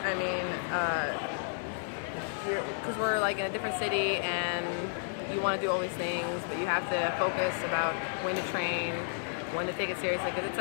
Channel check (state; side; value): silent; right; 56 dB below the other